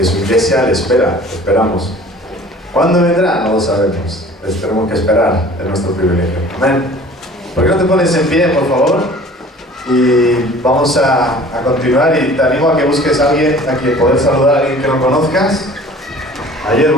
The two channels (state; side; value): normal; both; correlation 0.47